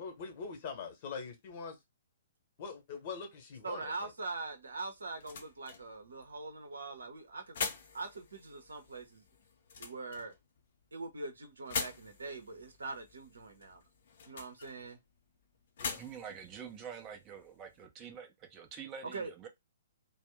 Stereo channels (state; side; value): inverted; both; correlation -0.57